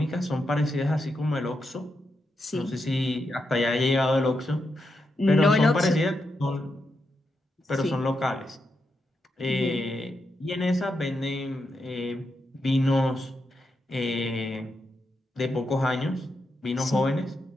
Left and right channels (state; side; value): normal; both; correlation 0.84